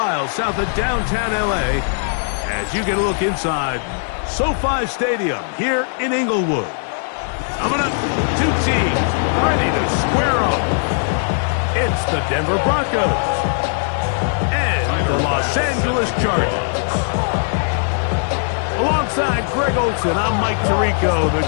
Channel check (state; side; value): silent; right; digital silence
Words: south of downtown LA as you get a look inside SoFi Stadium here in Inglewood. Coming up, two teams ready to square off. It's the Denver Broncos and the Los Angeles Chargers. Alongside Greg Olsen, I'm Mike Tirico. The